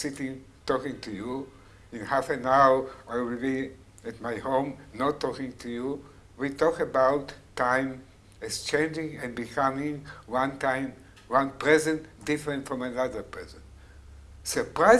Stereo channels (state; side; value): identical; both; correlation 1.00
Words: talking to you. In half an hour I will be at my home not talking to you. We talk about time as changing and becoming one time, one present different from another present.